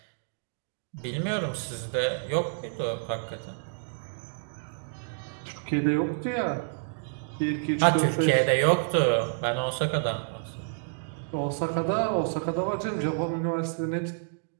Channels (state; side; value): silent; left; digital silence